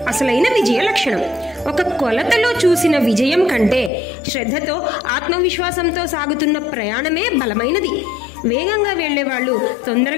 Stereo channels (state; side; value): drops out; right; at 3.9 s